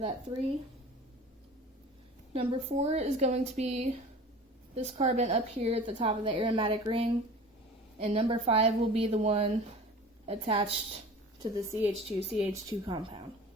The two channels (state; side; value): normal; both; correlation 0.40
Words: 3. Number 4 is going to be this carbon up here at the top of the aromatic ring, and number 5 will be the one attached to the CH2 compound.